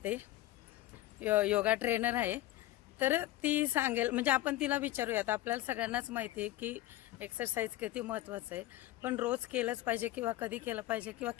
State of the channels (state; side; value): quieter; right; 15.5 dB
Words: योगा ट्रेनर आहे. तर ती सांगेल, म्हणजे आपण तिला विचारूयात. आपल्याला सगळ्यांनाच माहिती आहे की एक्सरसाइज किती महत्त्वाचं आहे, पण रोज केलंच पाहिजे किंवा कधी केलं पाहिजे किंवा